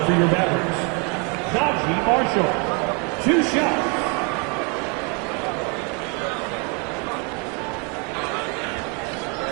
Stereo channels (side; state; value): left; quieter; 32.8 dB